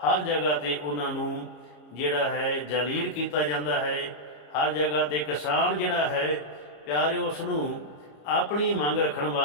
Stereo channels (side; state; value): right; late; 33 ms